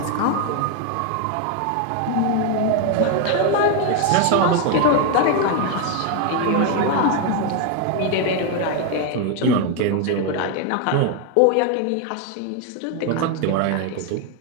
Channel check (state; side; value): different; both; correlation 0.01